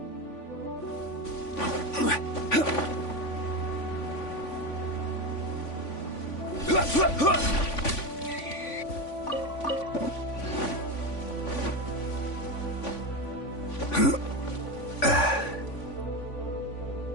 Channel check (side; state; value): right; late; 3.5 ms